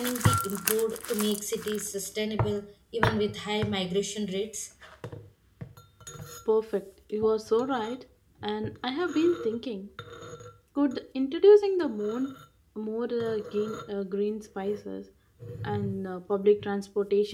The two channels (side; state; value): both; identical; correlation 1.00